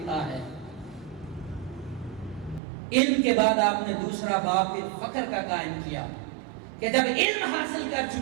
ہے۔ علم کے بعد آپ نے دوسرا باب پھر فخر کا قائم کیا، کہ جب علم حاصل کر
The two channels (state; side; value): drops out; left; at 2.6 s